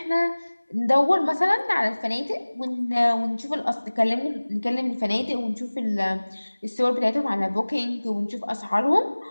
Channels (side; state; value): both; inverted; correlation -1.00